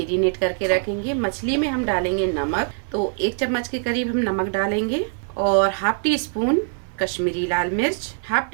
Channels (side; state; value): left; silent; 64 dB below the other